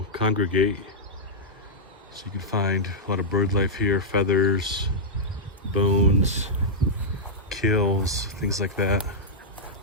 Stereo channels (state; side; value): normal; both; correlation -0.09